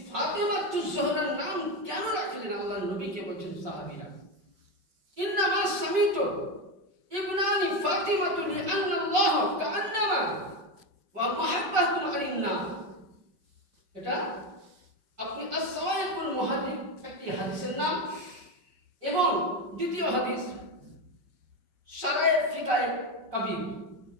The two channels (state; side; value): late; left; 5.4 ms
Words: ফাতিমাতুজ জোহরার নাম কেন রাখলেন? আল্লাহ নবীকে বলছেন সাহাবীরা, ইন্নামা সামিতু ইবনানি ফাতিমাতু লিআন্না আল্লাহ কাআন্নামা ওয়া মুহাব্বাতুন আলিন্না। এটা আপনি as-সাওয়াইকুল মুহাদ্দিস একটি হাদিসের নাম, এবং দ্বিতীয় হাদিস শারায়ে ফিকায়ে কাবীর